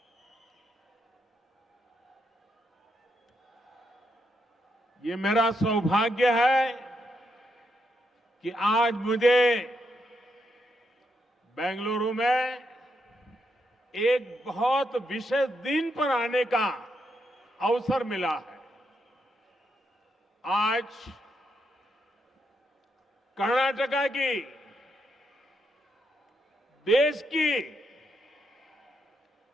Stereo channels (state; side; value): normal; both; correlation 0.80